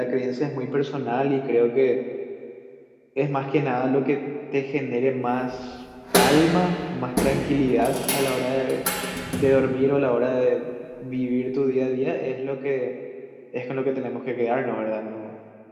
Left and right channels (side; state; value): both; identical; correlation 1.00